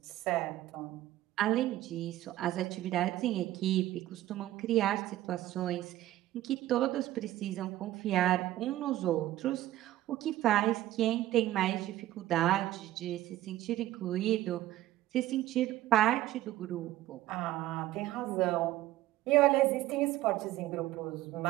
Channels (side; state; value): left; quieter; 15.0 dB